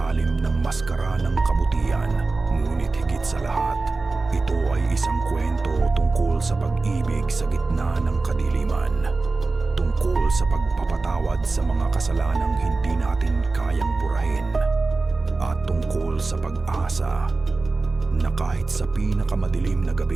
ng maskara ng kabutihan. Ngunit higit sa lahat, ito ay isang kwento tungkol sa pag-ibig sa gitna ng kadiliman. Tungkol sa pagpapatawad sa mga kasalanang hindi natin kayang burahin. At tungkol sa pag-asa na kahit sa pinakamadilim na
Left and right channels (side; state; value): left; quieter; 3.6 dB